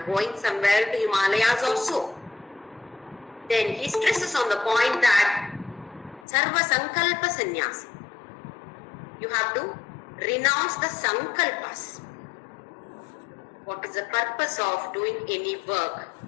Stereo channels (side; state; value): right; drops out; at 6.2 s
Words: going somewhere to Himalayas also. Then he stresses on the point that sarva sankalpa sannyasi. You have to renounce the sankalpas. What is the purpose of doing any work,